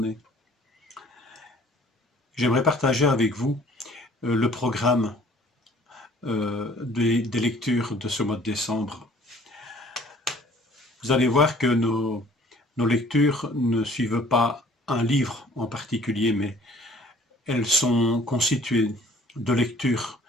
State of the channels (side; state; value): both; normal; correlation 0.55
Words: J'aimerais partager avec vous le programme des lectures de ce mois de décembre. Vous allez voir que nos lectures ne suivent pas un livre en particulier, mais elles sont constituées de lectures